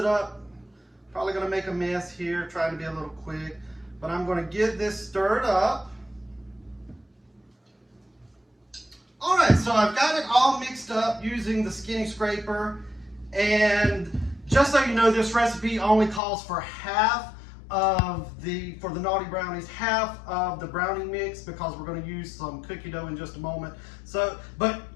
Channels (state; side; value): drops out; right; at 16.2 s